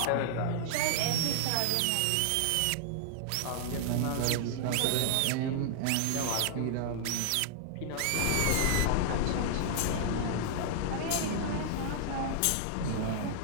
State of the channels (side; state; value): both; different; correlation 0.00